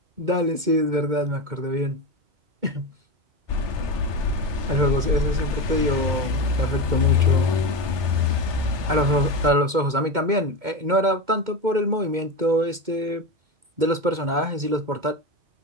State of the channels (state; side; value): late; left; 2.1 ms